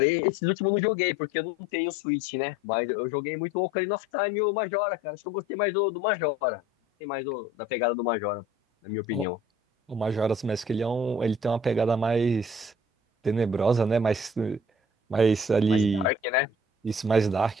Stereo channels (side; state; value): both; normal; correlation 0.50